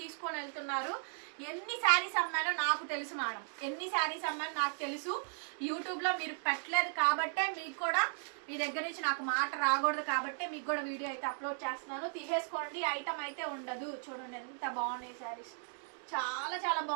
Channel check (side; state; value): left; silent; 54 dB below the other